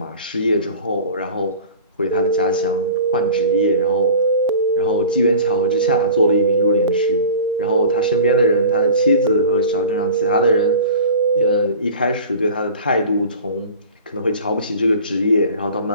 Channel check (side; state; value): both; inverted; correlation -0.39